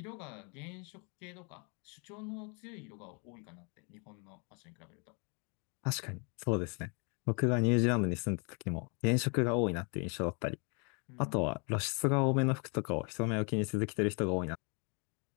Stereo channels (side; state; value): right; quieter; 35.3 dB